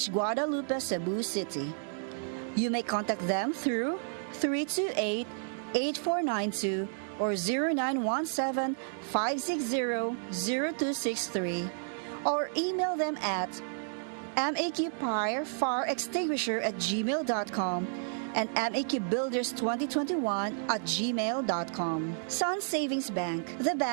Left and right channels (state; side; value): silent; left; digital silence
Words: Guadalupe, Cebu City. You may contact them through 328-8492 or 0917-560-0263 or email them at maqfirefireextinguisher@gmail.com and maqbuilders2021@gmail.com. Sun Savings Bank, the